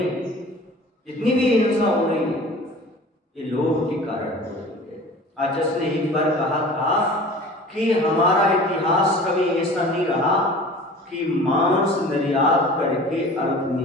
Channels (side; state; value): both; normal; correlation 0.43